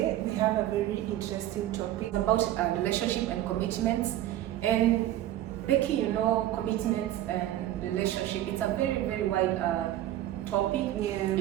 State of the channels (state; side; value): quieter; left; 13.4 dB